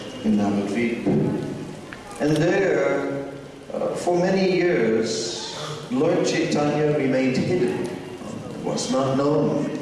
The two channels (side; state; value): both; identical; correlation 1.00